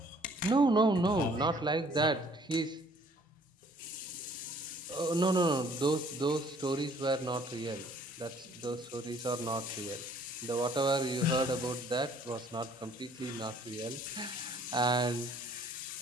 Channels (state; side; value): normal; both; correlation 0.58